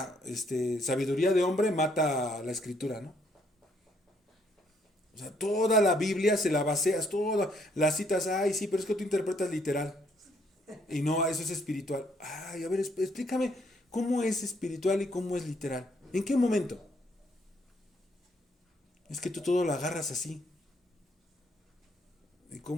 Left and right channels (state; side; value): normal; both; correlation 0.69